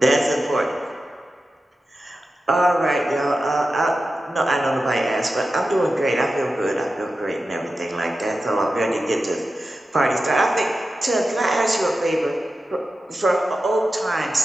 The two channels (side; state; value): both; normal; correlation 0.92